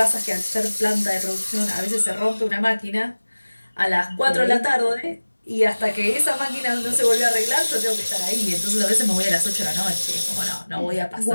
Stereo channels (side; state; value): both; inverted; correlation -1.00